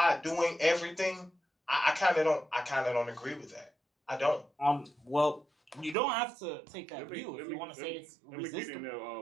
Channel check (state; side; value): drops out; left; at 6.0 s